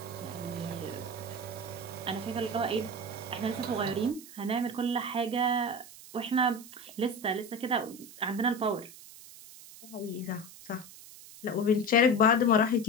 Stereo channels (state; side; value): noise; right; hiss, 17 dB below the sound